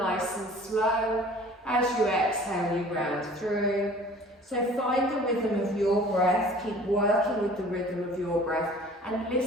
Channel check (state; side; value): normal; both; correlation 0.48